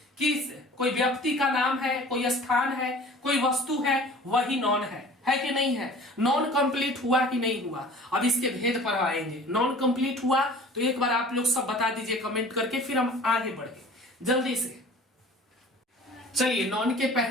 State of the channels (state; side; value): normal; both; correlation 0.45